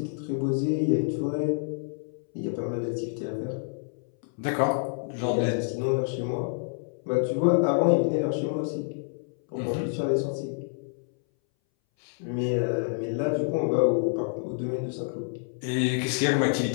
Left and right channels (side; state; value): right; silent; 60 dB below the other